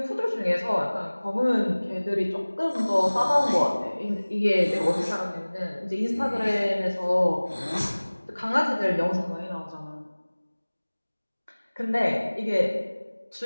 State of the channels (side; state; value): both; inverted; correlation -1.00